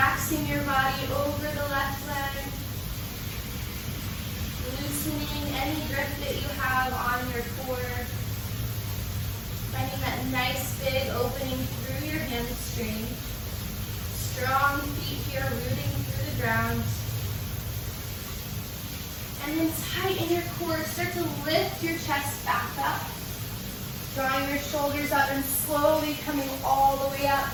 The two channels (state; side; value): identical; both; correlation 1.00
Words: your body over the left leg. Loosening any grip that you have on your core. Finding that nice big opening through your hamstring. Strong feet here rooting through the ground. And then tighten your core. Start to lift your chest back up. Drawing your shoulders up and slowly coming all the way up.